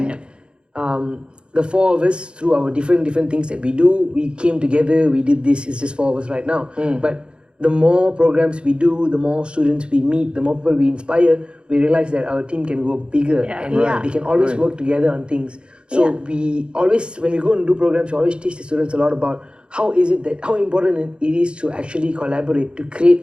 the four of us, through our different things that we do, we came together, we did this, it's just four of us right now. But the more programs we do, the more students we meet, the more people we inspire, we realize that our team can go bigger and we can always work together on things. So we always, when we go and do programs, we always teach the students a lot about how important it is to actually collaborate, to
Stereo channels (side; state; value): left; late; 0.054 ms